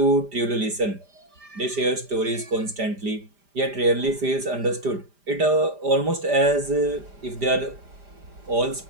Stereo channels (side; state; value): left; late; 5.0 ms